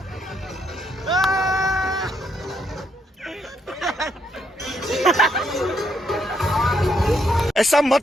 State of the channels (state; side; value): normal; both; correlation 0.74